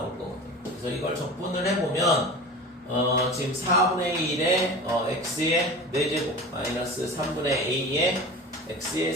거거든요. 그래서 이걸 적분을 해보면 지금 4분의 1의 x의 4제곱 마이너스 3분의 a의 x의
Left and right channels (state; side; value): normal; both; correlation 0.34